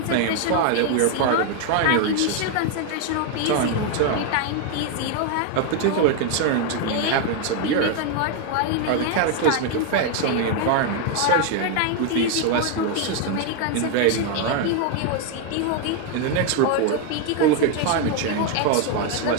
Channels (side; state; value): both; different; correlation 0.01